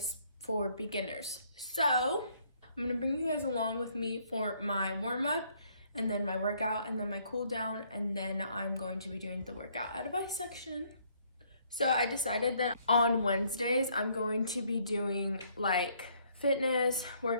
for beginners. So I'm gonna bring you guys along with me for my warm-up and then my workout and then my cool down, and then I'm going to be doing the workout advice section. So I decided that on Wednesdays I'm going to be doing like fitness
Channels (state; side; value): inverted; both; correlation -0.66